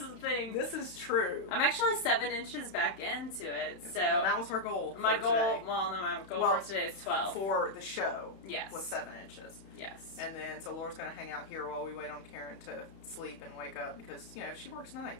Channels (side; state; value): right; late; 31 ms